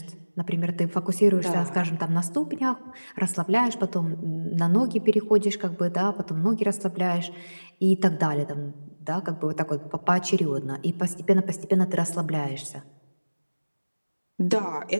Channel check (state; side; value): inverted; both; correlation -1.00